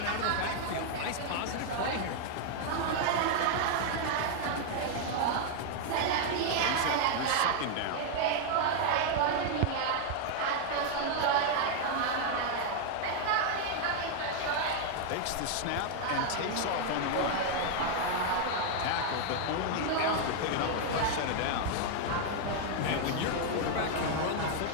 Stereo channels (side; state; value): both; different; correlation 0.00